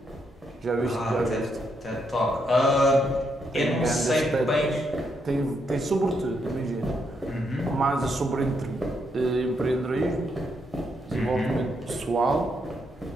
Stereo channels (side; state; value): both; normal; correlation 0.78